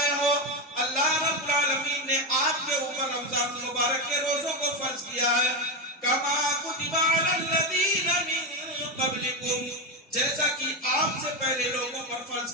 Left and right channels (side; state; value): both; normal; correlation 0.12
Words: ہو، اللہ رب العالمین نے آپ کے اوپر رمضان المبارک کے روزوں کو فرض کیا ہے۔ کما کتب علی الذین من قبلکم، جیسا کہ آپ سے پہلے لوگوں پر فرض